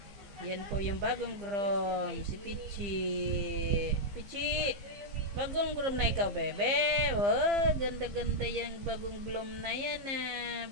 Yan po yung bagong groom, si Pichi. Pichi! Bagong groom na ikaw, bebe. Oh, ganda-ganda yung bagong groom na yan, ah.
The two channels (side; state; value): left; late; 15 ms